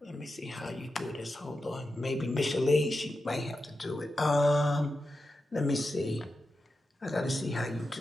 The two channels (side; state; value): both; normal; correlation 0.90